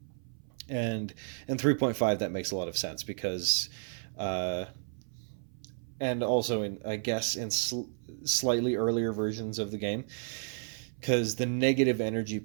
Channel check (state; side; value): silent; left; 56 dB below the other